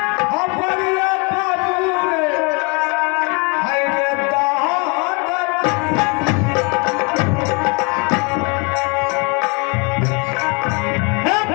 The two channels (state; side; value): quieter; right; 31.6 dB